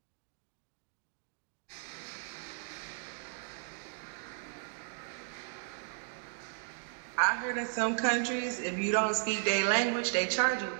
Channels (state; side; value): silent; left; digital silence